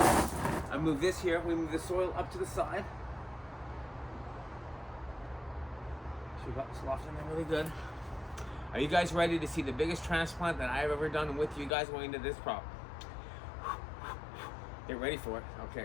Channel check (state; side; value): drops out; right; at 11.8 s